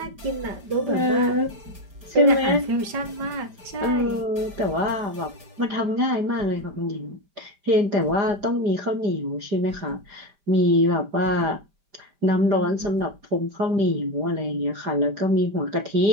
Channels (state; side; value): late; left; 5.0 ms